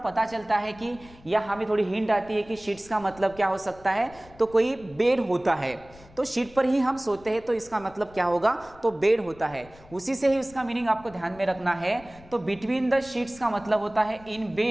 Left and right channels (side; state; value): left; noise; rumble, 22 dB below the sound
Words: चलता है कि या हमें थोड़ी हिंट आती है कि शीट्स का मतलब क्या हो सकता है, तो कोई बेड होता है तो शीट पर ही हम सोते हैं, तो इसका मतलब क्या होगा, तो बेड होता है। उसी से ही उसका मीनिंग आपको ध्यान में रखना है। तो बिटवीन द शीट्स का मतलब होता है इन